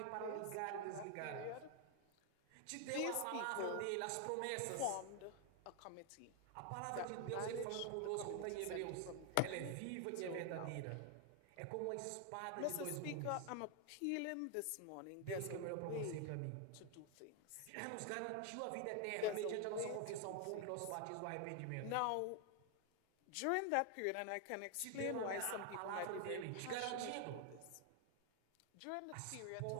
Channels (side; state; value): both; different; correlation 0.00